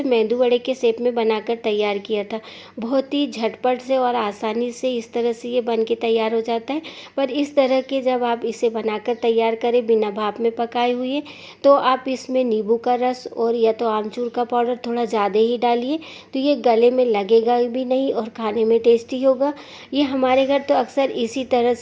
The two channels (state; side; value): identical; both; correlation 1.00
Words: मेंदू वड़े के शेप में बनाकर तैयार किया था। बहुत ही झटपट से और आसानी से इस तरह से ये बन के तैयार हो जाता है। पर इस तरह के जब आप इसे बनाकर तैयार करें बिना भाप में पकाए हुए, तो आप इसमें नींबू का रस और या तो आमचूर का पाउडर थोड़ा ज़्यादा ही डालिए, तो ये गले में लगेगा भी नहीं और खाने में टेस्टी होगा। ये हमारे घर तो अक्सर इसी तरह